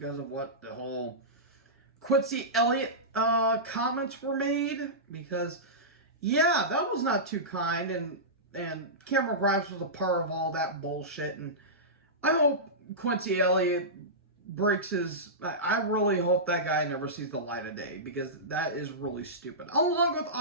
of what the whole Quincy Elliott comments were made. Because, yeah, that was not too kind, and Cameron Grimes was a part of all that bullshit, and I hope Quincy Elliott breaks his... I really hope that guy never sees the light of day, because that is really stupid. Along with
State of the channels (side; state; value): both; normal; correlation -0.16